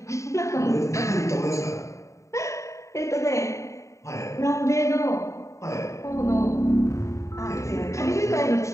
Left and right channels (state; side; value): late; right; 0.15 ms